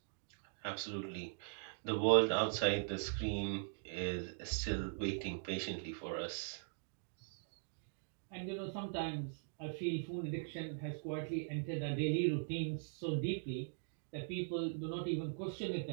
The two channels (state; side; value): silent; left; digital silence